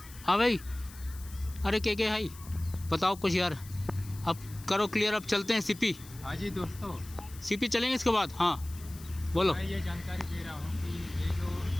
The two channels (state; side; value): noise; left; hiss, 19 dB below the sound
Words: हाँ भाई, अरे के भाई बताओ कुछ यार, अब करो क्लियर, अब चलते हैं सीपी। हाँ जी दोस्तों, सीपी चलेंगे इसके बाद। हाँ बोलो। मैं ये जानकारी दे रहा हूँ कि ये जो